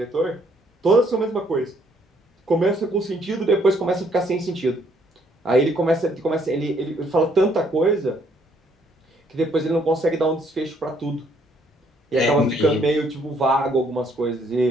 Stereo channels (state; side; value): normal; both; correlation 0.67